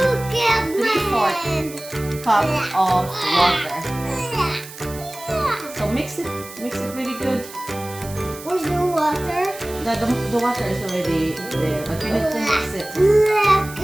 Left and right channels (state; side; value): noise; right; hiss, 15 dB below the sound